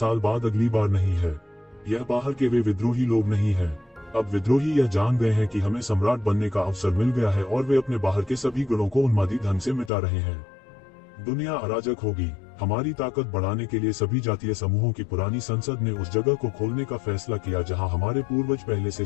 बाद अगली बार नहीं है? यह बाहर के वे विद्रोही लोग नहीं हैं। अब विद्रोही यह जान गए हैं कि हमें सम्राट बनने का अवसर मिल गया है और वे अपने बाहर के सभी गुणों को उन्मादी ढंग से मिटा रहे हैं। दुनिया अराजक होगी। हमारी ताकत बढ़ाने के लिए सभी जातीय समूहों की पुरानी संसद ने उस जगह को खोलने का फैसला किया जहां हमारे पूर्वज पहले से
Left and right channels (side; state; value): right; drops out; at 9.9 s